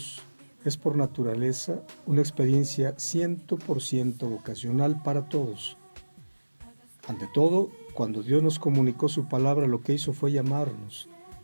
es por naturaleza una experiencia 100% vocacional para todos. Ante todo, cuando Dios nos comunicó su palabra, lo que hizo fue llamarnos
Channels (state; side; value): inverted; both; correlation -1.00